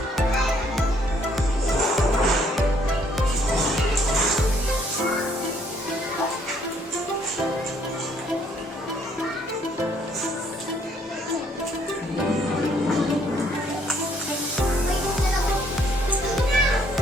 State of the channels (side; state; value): both; normal; correlation 0.66